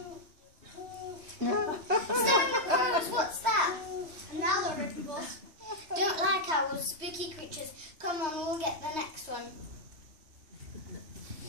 Staring at crows, what's that? Another written boss. Don't like owls, spooky creatures. Come on, we'll get the next one.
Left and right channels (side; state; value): left; late; 3.1 ms